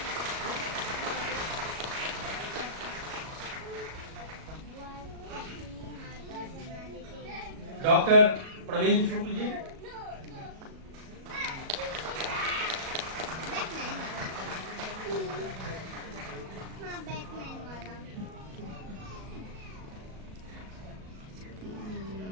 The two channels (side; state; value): left; late; 37 ms